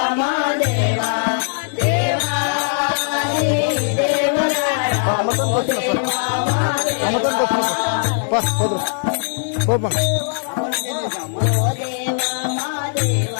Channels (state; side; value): silent; right; digital silence